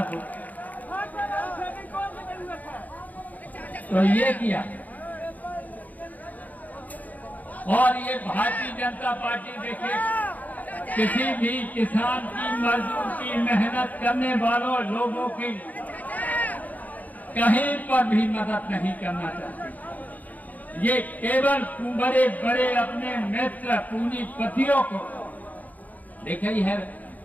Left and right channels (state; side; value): late; right; 0.078 ms